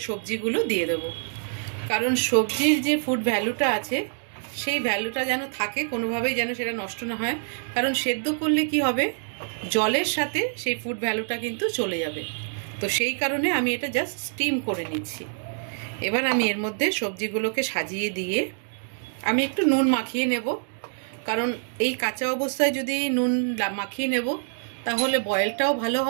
সবজিগুলো দিয়ে দেবো, কারণ সবজির যে ফুড ভ্যালুটা আছে সেই ভ্যালুটা যেন থাকে, কোনোভাবেই যেন সেটা নষ্ট না হয়। কারণ সেদ্ধ করলে কি হবে, জলের সাথে সেই ফুড ভ্যালুটা কিন্তু চলে যাবে। তো সেই কারণে আমি এটা জাস্ট স্টিম করে নিচ্ছি। এবার আমি এর মধ্যে সবজিগুলোকে সাজিয়ে দিয়ে আমি একটু নুন মাখিয়ে নেব, কারণ এই কাঁচা অবস্থায় যদি নুন মাখিয়ে নেব তাহলে বয়েলটাও ভালো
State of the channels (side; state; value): left; silent; digital silence